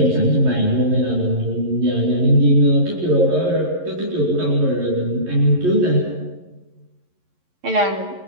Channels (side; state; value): left; late; 11 ms